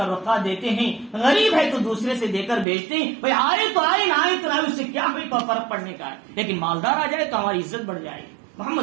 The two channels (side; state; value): left; drops out; at 2.7 s